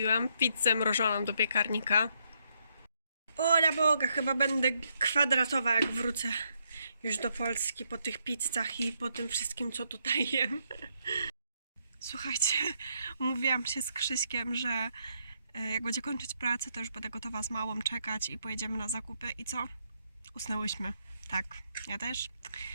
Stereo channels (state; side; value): inverted; both; correlation -0.76